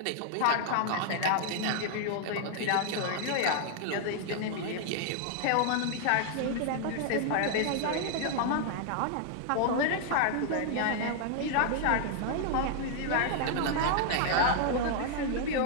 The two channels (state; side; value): different; both; correlation 0.00